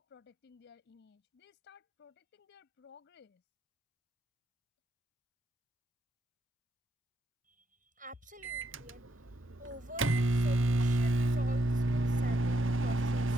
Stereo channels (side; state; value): both; normal; correlation 0.79